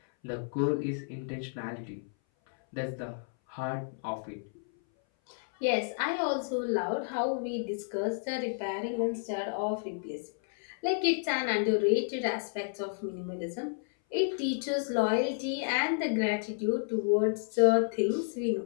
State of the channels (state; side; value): silent; right; 57 dB below the other